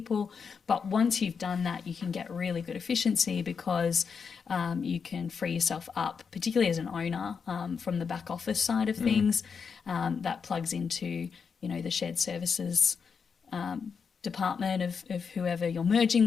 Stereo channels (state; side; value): quieter; right; 6.0 dB